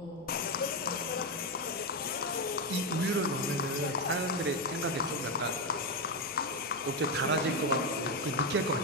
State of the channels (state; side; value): noise; left; hum, 28 dB below the sound